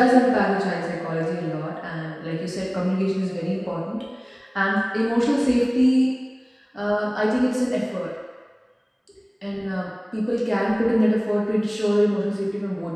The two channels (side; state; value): both; identical; correlation 1.00